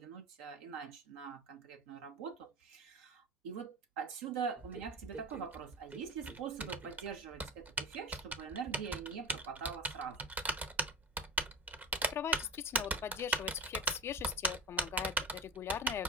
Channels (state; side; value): normal; both; correlation 0.28